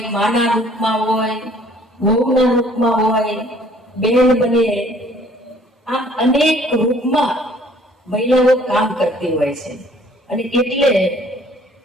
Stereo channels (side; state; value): both; normal; correlation 0.57